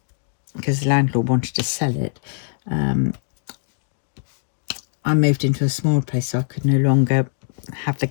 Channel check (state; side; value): silent; right; digital silence